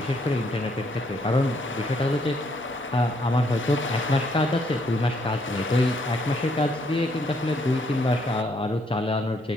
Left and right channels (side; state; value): both; normal; correlation 0.71